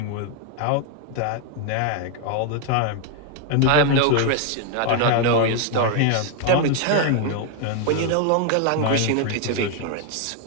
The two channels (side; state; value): both; different; correlation 0.01